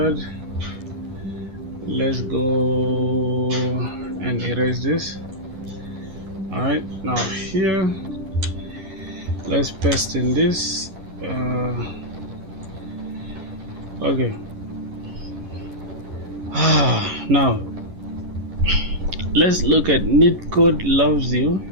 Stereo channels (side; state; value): left; late; 11 ms